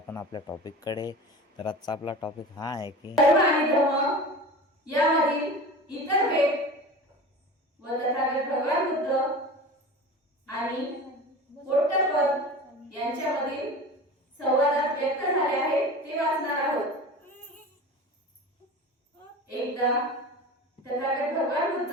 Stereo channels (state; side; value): normal; both; correlation 0.34